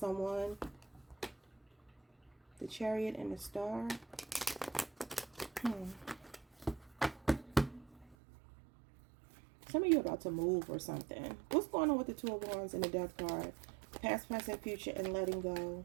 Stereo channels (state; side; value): drops out; left; at 8.2 s